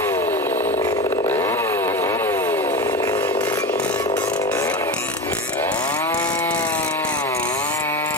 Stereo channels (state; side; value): normal; both; correlation 0.24